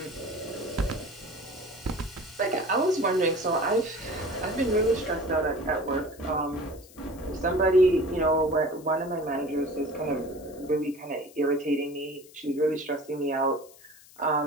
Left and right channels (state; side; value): noise; left; hiss, 23 dB below the sound